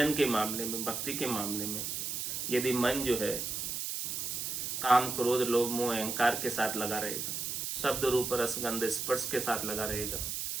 के मामले में, भक्ति के मामले में, यदि मन जो है काम क्रोध लोभ मोह अहंकार के साथ लगा रहेगा, शब्द रूप रसगंध स्पर्श के साथ लगा रहेगा,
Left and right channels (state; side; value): noise; right; hiss, 3 dB below the sound